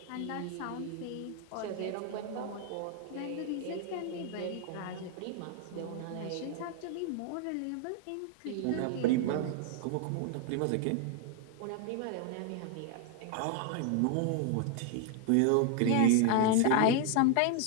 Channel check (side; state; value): both; different; correlation 0.01